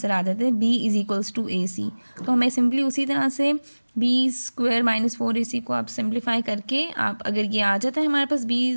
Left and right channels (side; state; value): both; inverted; correlation -1.00